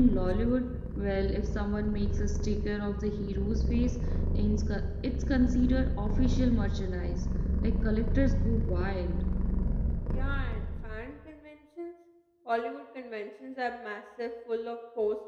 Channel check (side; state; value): both; identical; correlation 1.00